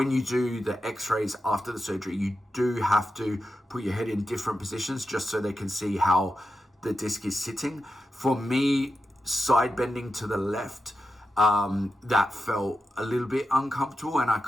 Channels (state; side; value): normal; both; correlation 0.90